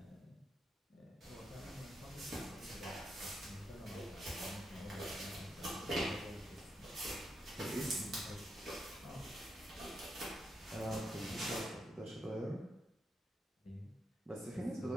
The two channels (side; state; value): both; normal; correlation 0.82